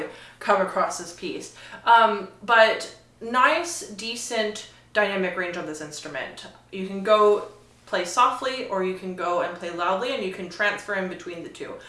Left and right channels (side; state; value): both; identical; correlation 1.00